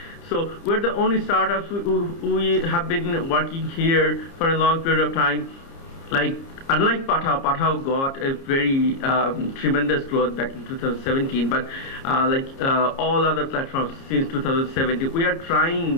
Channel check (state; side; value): late; right; 30 ms